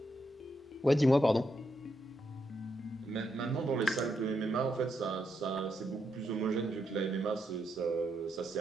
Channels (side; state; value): both; normal; correlation 0.81